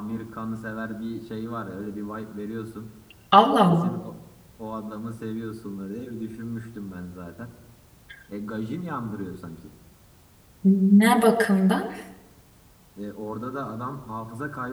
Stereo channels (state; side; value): identical; both; correlation 1.00